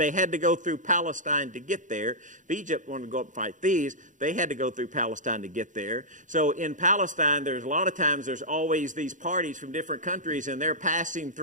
had to go through Palestine to get there. If Egypt wanted to go up and fight these, they had to go through Palestine to get there. So in Palestine, there's a lot of times there's always these parties from different countries, and they're passing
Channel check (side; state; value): left; late; 0.37 ms